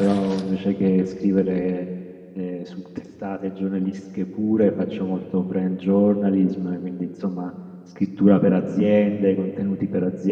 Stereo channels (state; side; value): identical; both; correlation 1.00